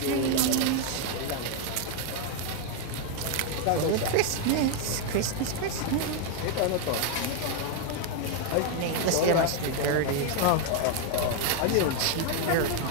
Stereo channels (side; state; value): both; different; correlation 0.01